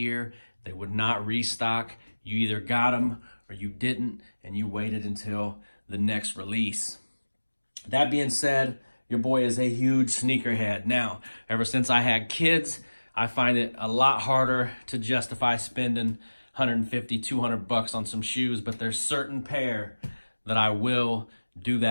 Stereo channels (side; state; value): both; inverted; correlation -1.00